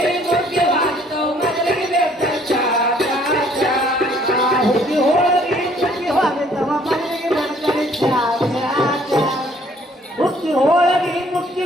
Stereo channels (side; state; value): both; normal; correlation 0.61